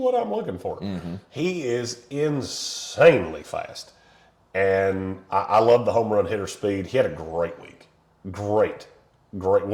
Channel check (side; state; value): both; identical; correlation 1.00